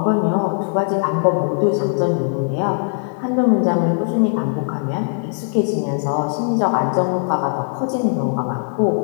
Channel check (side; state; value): right; silent; 57 dB below the other